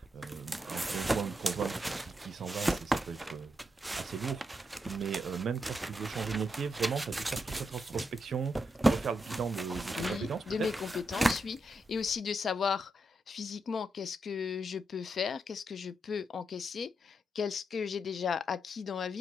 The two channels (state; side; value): normal; both; correlation 0.83